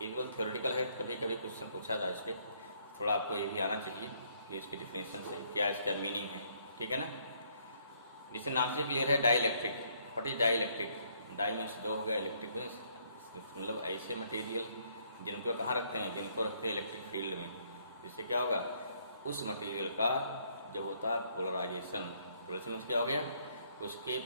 थ्योरेटिकल है, कभी कभी क्वेश्चन पूछा था इस पर, थोड़ा आपको ये भी आना चाहिए कि इसकी डिफिनेशन से क्या इसका मीनिंग है, ठीक है ना। जिससे नाम से क्लियर है, dielectric. What is dielectric? Die means दो हो गया, इलेक्ट्रिक मीन्स मतलब ऐसे मटेरियल जिनको कहाँ रखते हैं, जिनको रखते हैं इलेक्ट्रिक फील्ड में। जिससे क्या होगा, उस मटेरियल का जब होता है पोलराइजेशन। पोलराइजेशन मीन्स क्या हो गया, उसके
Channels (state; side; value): inverted; both; correlation -0.68